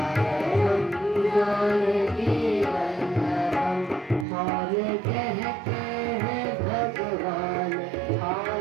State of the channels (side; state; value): left; drops out; at 4.2 s